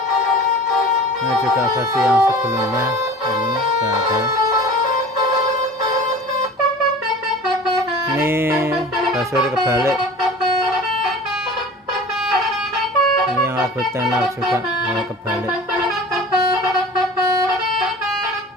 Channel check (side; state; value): both; normal; correlation 0.40